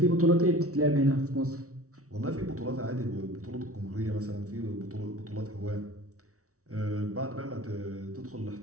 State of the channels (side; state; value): left; late; 0.64 ms